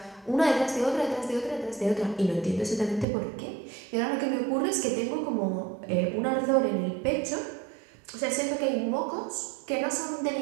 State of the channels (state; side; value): drops out; left; at 3.1 s